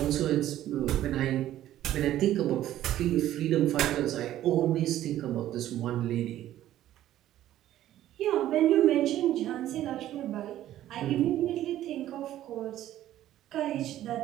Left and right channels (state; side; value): quieter; left; 13.0 dB